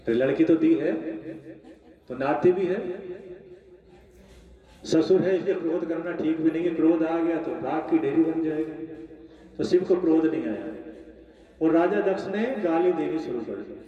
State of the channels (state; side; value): identical; both; correlation 1.00